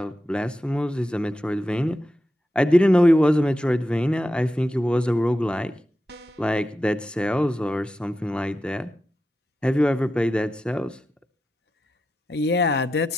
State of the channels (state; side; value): normal; both; correlation 0.89